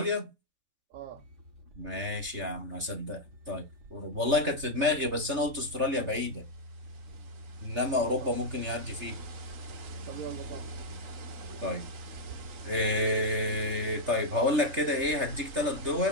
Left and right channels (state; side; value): late; left; 3.3 ms